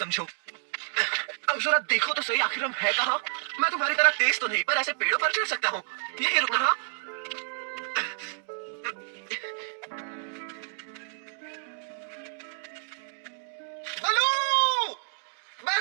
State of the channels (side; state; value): left; silent; 58 dB below the other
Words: अब जरा देखो तो सही, आखिर हम है कहाँ? मैं तुम्हारी तरह तेज तो नहीं, पर ऐसे पेड़ों पर चढ़ सकता हूँ। यही रुकना। हाँ? बलू,